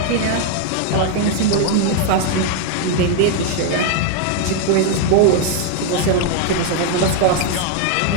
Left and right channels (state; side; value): different; both; correlation 0.00